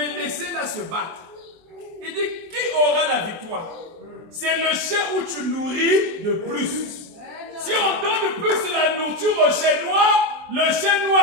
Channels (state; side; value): late; left; 24 ms